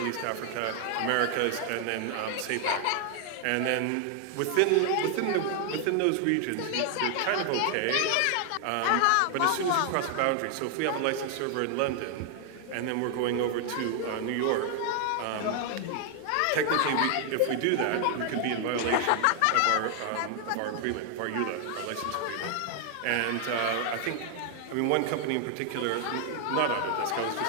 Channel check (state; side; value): different; both; correlation 0.00